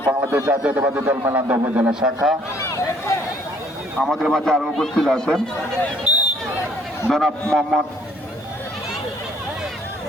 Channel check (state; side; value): normal; both; correlation 0.61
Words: বাংলাদেশ জাতীয়তাবাদী দল মেলান্দা উপজেলা শাখা। আমাদের মাঝে আরো উপস্থিত আছেন জনাব মোহাম্মদ